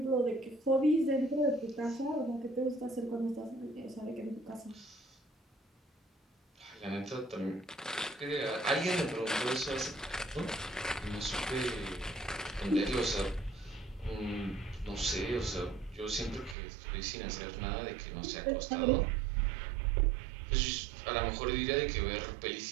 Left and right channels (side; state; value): left; drops out; at 16.6 s